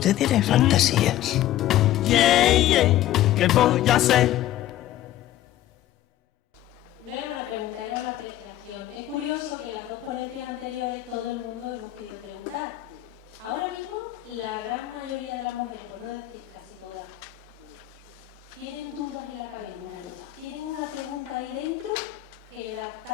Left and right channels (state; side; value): quieter; right; 13.6 dB